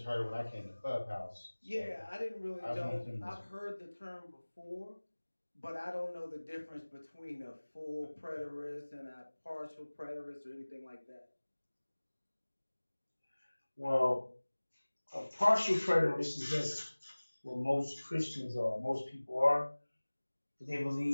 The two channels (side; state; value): both; inverted; correlation -1.00